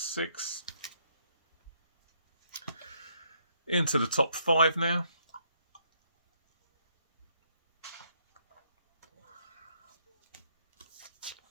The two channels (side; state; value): both; inverted; correlation -0.71